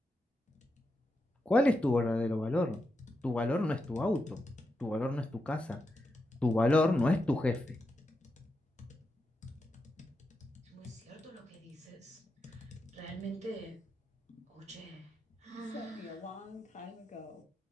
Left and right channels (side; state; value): both; normal; correlation 0.86